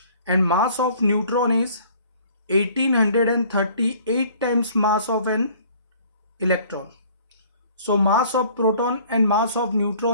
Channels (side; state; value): both; inverted; correlation -0.54